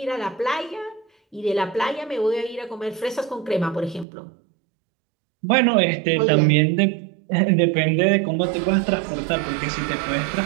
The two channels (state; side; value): drops out; left; at 4.0 s